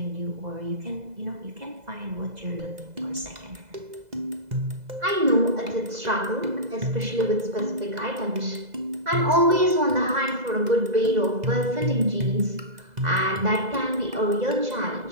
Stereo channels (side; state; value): left; late; 2.0 ms